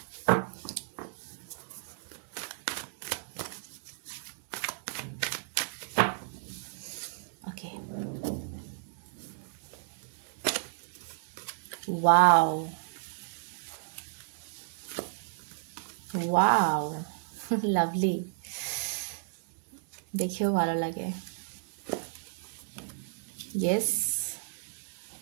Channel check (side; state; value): left; silent; 56 dB below the other